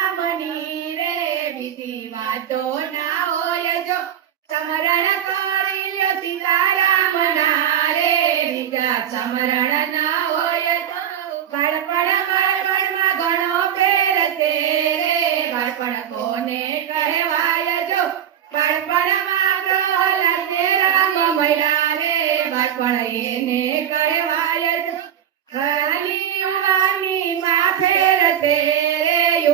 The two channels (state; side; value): quieter; left; 9.9 dB